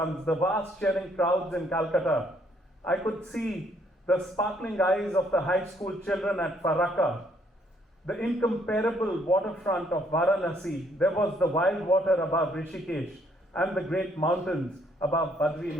the vast cheering crowds in Calcutta. I could see the sparkling eyes of the high school children at Farakka, the incomparable waterfront of Varanasi. There was the wild water above Rishikesh and the great mountains above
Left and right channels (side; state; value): both; normal; correlation 0.68